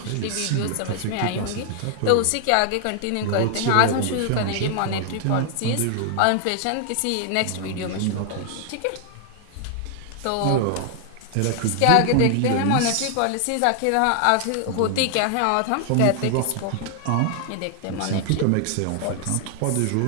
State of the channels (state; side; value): different; both; correlation 0.00